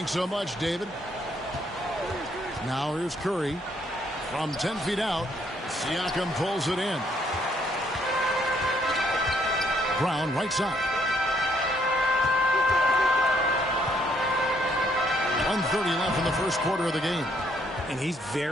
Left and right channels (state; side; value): normal; both; correlation 0.70